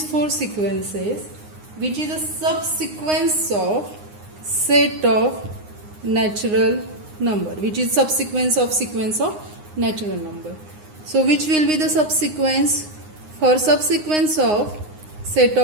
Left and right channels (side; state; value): left; late; 9.7 ms